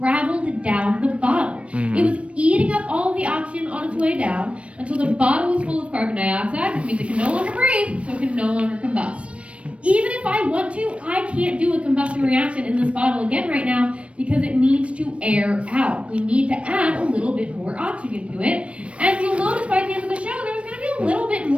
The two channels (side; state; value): left; late; 0.062 ms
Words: down the bottle. It was eating up all of the oxygen on its way down until the bottle was full of carbon dioxide, which means it can no longer breathe, so it can no longer combust. Even if I want to, I can't do a combustion reaction in this bottle again right now because it needs to air out. We need to add a little bit more oxygen to it. And you'll notice by the end of the show, there's going to be a little bit